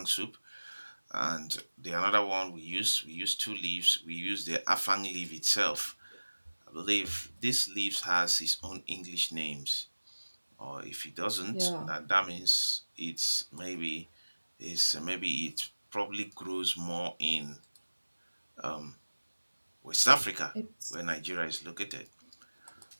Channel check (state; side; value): inverted; both; correlation -1.00